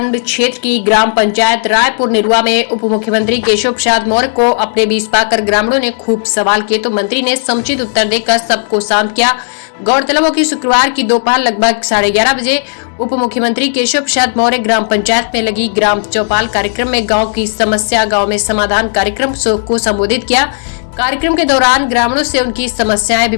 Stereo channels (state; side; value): silent; right; digital silence